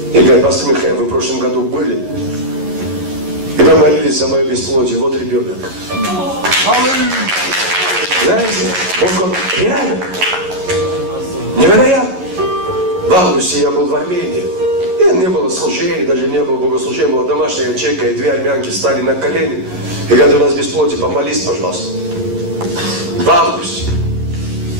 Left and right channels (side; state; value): left; late; 11 ms